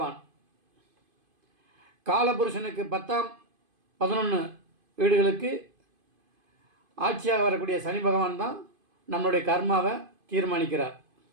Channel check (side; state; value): left; late; 2.5 ms